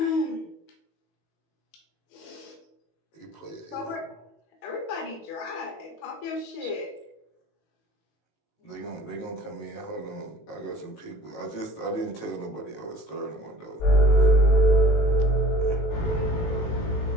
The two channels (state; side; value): late; right; 19 ms